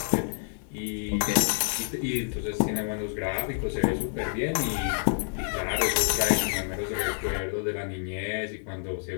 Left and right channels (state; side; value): silent; right; digital silence